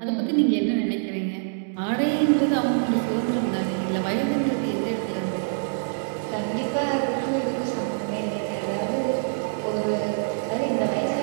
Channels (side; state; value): left; silent; digital silence